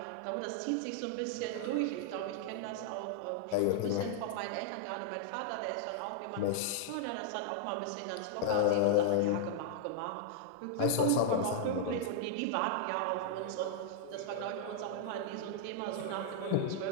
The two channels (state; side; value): different; both; correlation -0.01